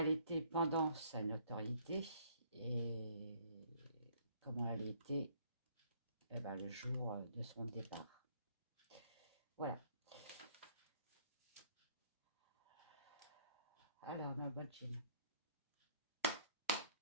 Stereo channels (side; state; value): both; inverted; correlation -0.63